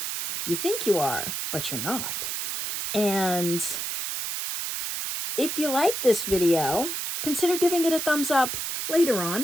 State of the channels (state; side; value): noise; right; hiss, 3 dB below the sound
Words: you think you are, but you're not. And if you like this video, consider giving it a thumbs up later